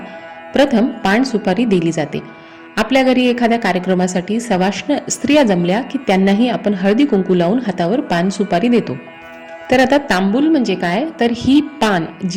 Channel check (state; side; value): identical; both; correlation 1.00